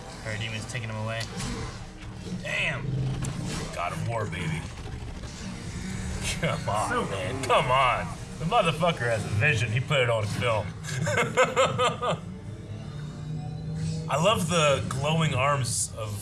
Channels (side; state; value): both; identical; correlation 1.00